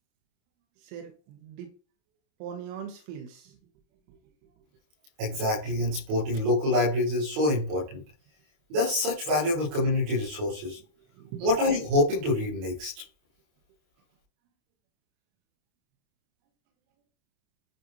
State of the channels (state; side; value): late; left; 28 ms